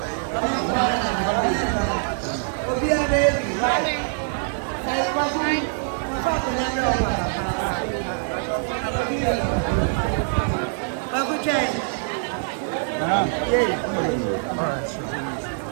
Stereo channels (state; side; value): silent; left; digital silence